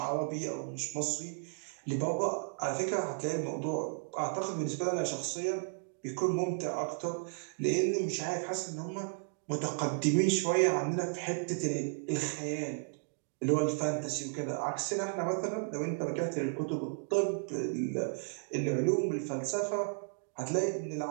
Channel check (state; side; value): silent; left; digital silence